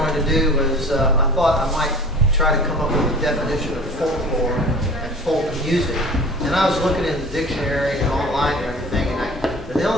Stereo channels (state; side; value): normal; both; correlation 0.42